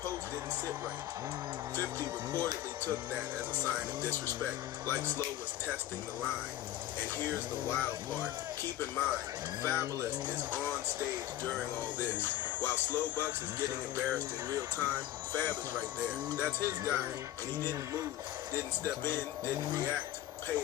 post didn't sit right. 50 reportedly took that as a sign of disrespect, like Slow was testing the line. And here's the wild part. Keep in mind, Fabulous is on stage during all this. While Slow Bucks is getting embarrassed in real time, Fab is right there. That's his guy, and he didn't move, didn't step in, didn't react. Pay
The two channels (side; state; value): right; quieter; 13.4 dB